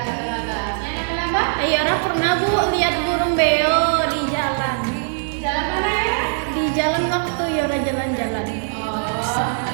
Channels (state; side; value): silent; left; digital silence